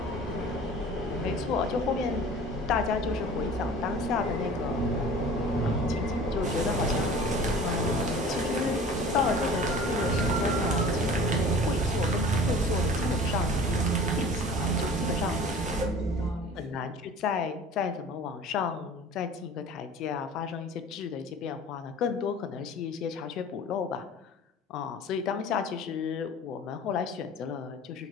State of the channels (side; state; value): both; normal; correlation 0.42